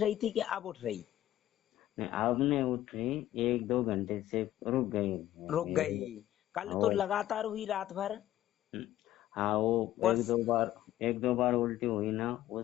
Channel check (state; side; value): quieter; right; 13.6 dB